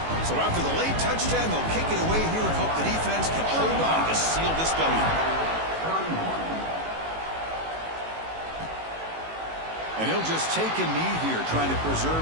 So after the late touchdown, they'll kick it away here and hope the defense can hold on to seal this W. And he'll just take a knee here, trying to preserve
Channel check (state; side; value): late; left; 18 ms